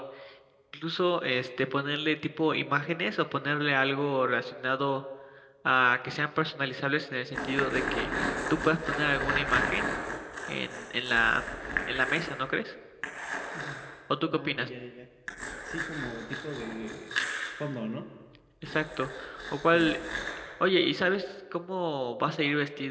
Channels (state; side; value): identical; both; correlation 1.00